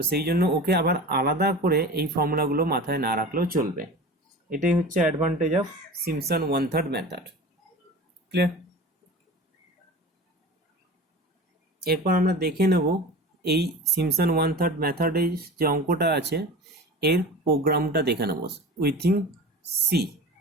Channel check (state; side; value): normal; both; correlation 0.34